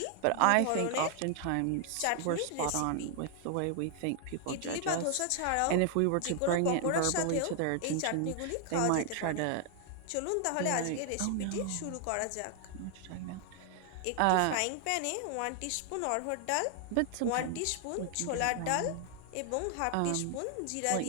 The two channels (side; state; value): both; different; correlation 0.00